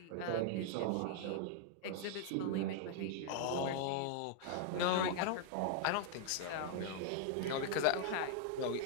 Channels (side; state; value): both; different; correlation 0.00